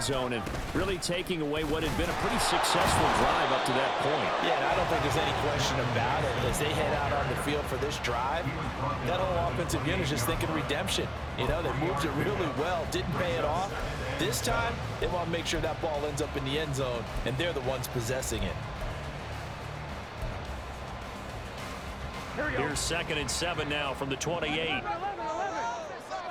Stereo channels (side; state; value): both; identical; correlation 1.00